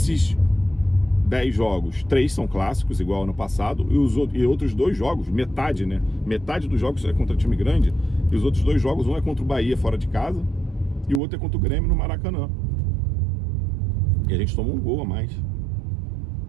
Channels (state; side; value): drops out; left; at 11.2 s